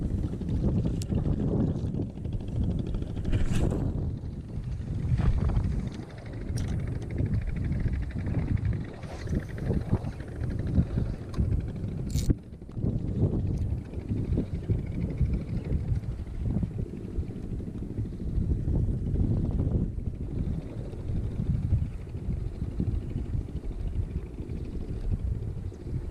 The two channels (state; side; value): identical; both; correlation 1.00